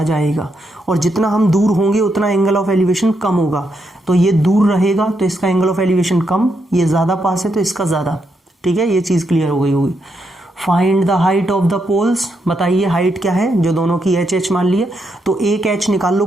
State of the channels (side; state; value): both; normal; correlation 0.80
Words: जाएगा, और जितना हम दूर होंगे उतना एंगल ऑफ एलिवेशन कम होगा। तो ये दूर रहेगा तो इसका एंगल ऑफ एलिवेशन कम, ये ज़्यादा पास है तो इसका ज़्यादा। ठीक है, ये चीज़ क्लियर हो गई होगी। Find the height of the poles, बताइए हाइट क्या है, जो दोनों की h मान लिए, तो एक h निकाल लो